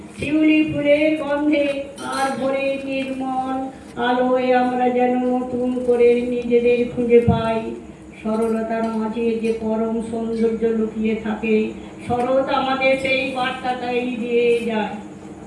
শিউলি ফুলের গন্ধে আর ভোরের নির্মল আলোয় আমরা যেন নতুন করে নিজেদের খুঁজে পাই। সরলতার মাঝে যে পরম সৌন্দর্য লুকিয়ে থাকে, শরৎ আমাদের সেই বার্তাটাই দিয়ে যায়।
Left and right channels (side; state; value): both; identical; correlation 1.00